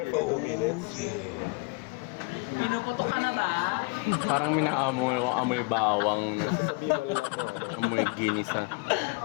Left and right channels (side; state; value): right; quieter; 28.6 dB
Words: for 2 minutes. Pinuputo ka na ba? Parang may naamoy bawang, So, sasabihin mo lang kung ano. amoy ginisa.